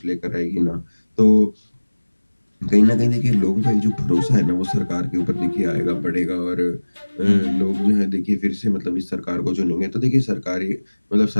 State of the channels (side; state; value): both; inverted; correlation -1.00